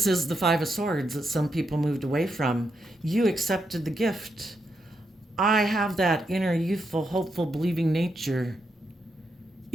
is the Five of Swords that some people moved away from. You accepted the gift. I have that inner, youthful, hopeful, believing nature.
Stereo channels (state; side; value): normal; both; correlation 0.82